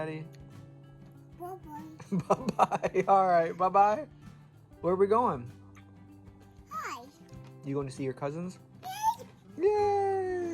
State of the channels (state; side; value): identical; both; correlation 1.00